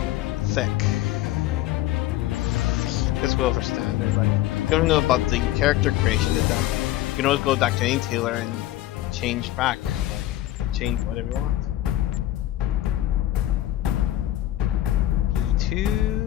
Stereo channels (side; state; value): right; quieter; 14.4 dB